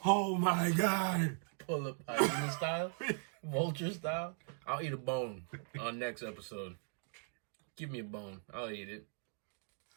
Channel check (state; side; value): silent; left; 52 dB below the other